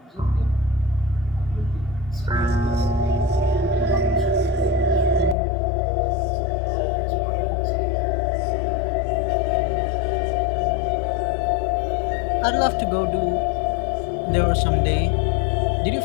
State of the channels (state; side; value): drops out; right; at 5.4 s